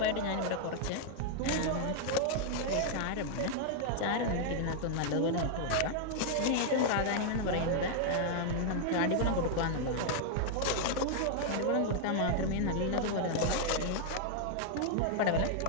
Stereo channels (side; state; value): both; different; correlation -0.01